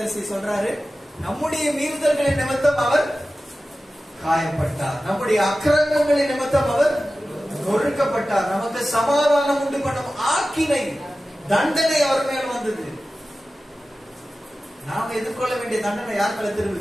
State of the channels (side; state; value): both; normal; correlation 0.95